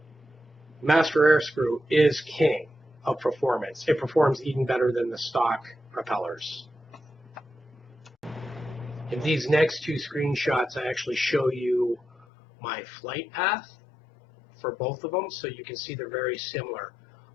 Master Airscrew is king of performance. It performs even better than the stock propellers. In these next 2 screenshots, I actually show you my flight path for both of them, so you can see they're very similar.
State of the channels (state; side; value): drops out; right; at 12.2 s